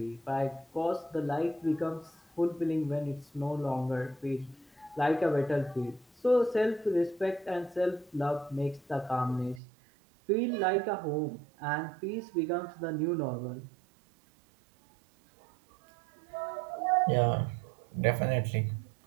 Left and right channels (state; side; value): drops out; left; at 9.6 s